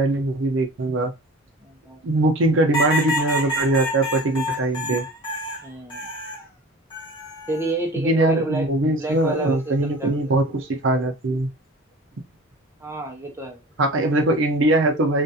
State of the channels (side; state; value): both; normal; correlation 0.40